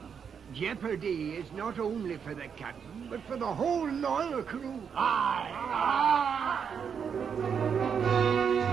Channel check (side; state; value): left; quieter; 7.0 dB